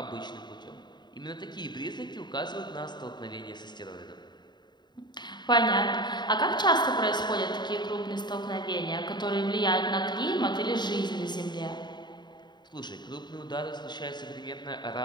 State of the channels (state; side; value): late; right; 0.21 ms